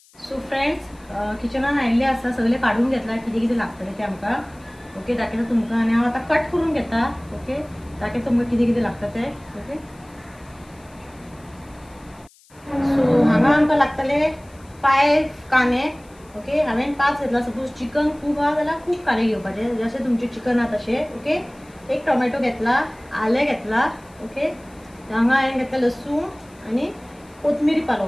सो फ्रेंड्स किचनान आयिल्ले आसा सगळे काढून घेतला कितें कितें लागतलें तें आमकां ओके दाखयता तुमकां आनी हांव आतां कट करून घेता ओके दाखयता तुमकां कितें कितें लागता तें ओके सो हांगा आमकां लागतले 5 कांदे ओके हांवें 5 घेतला सपोज चिकन खूब आहा जाल्यार खूब कांदे घेवपाचे जशें तुमचें चिकन आहा तशें ओके एक टोमॅटो घेतला आलें घेतला ओके हांगा हांवें घेतला लसूण आनी कोथमिरी पालो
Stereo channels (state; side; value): noise; left; hiss, 29 dB below the sound